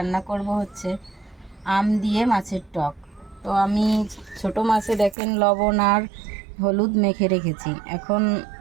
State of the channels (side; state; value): left; drops out; at 5.2 s